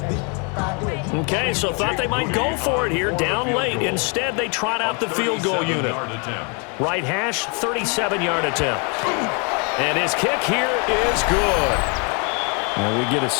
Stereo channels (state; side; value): quieter; right; 34.8 dB